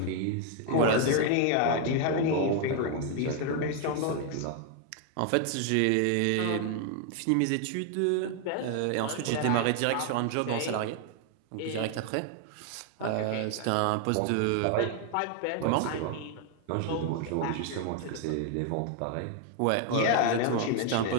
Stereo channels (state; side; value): different; both; correlation 0.00